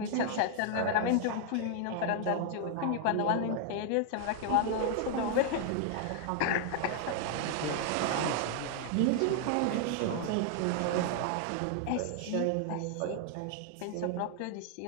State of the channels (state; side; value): different; both; correlation 0.00